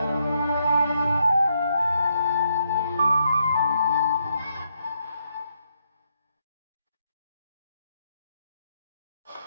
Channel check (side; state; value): both; inverted; correlation -0.77